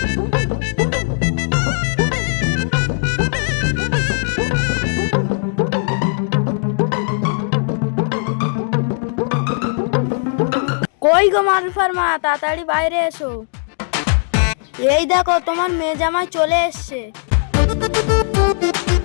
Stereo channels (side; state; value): right; silent; digital silence